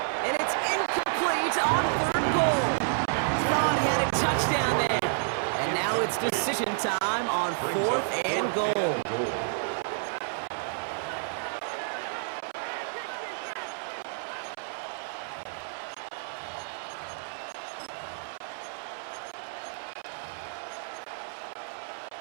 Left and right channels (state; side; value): silent; left; 58 dB below the other